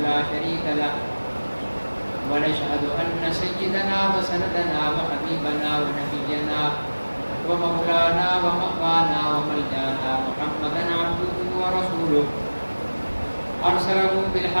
لا شريك له ونشهد أن سيدنا وسندنا وحبيبنا ونبينا ومولانا ومقوانا وملجانا محمدا عبده ورسوله أرسله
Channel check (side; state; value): both; inverted; correlation -1.00